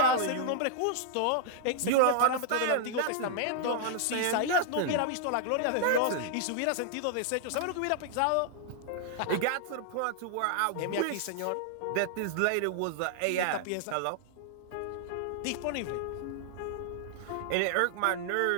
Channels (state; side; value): different; both; correlation -0.01